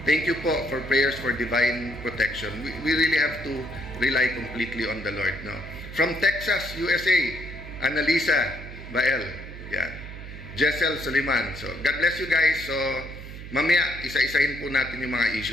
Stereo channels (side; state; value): right; noise; hum, 12 dB below the sound